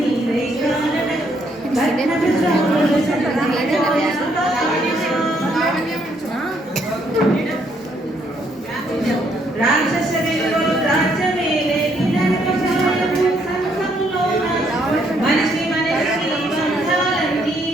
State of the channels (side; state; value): both; normal; correlation 0.71